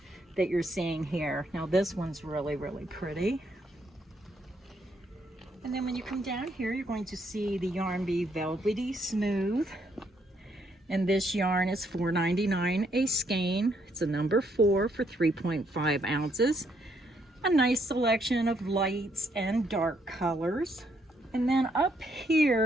that you're seeing here. Now this one's really, really pretty. And then when you come down here, you're going to see the Yarn Bee Velvety Smooth. And this yarn is $4.99 a skein. It's a number 4 for 3.5 ounces. A nice selection of lights and dark colors. And then up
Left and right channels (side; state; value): both; normal; correlation 0.73